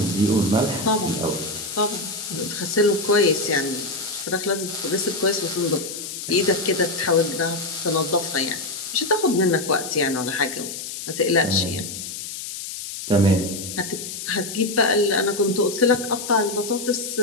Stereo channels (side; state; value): left; noise; hiss, 8 dB below the sound